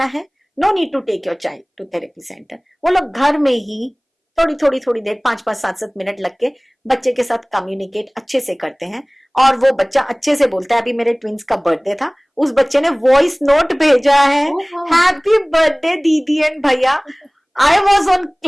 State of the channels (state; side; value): identical; both; correlation 1.00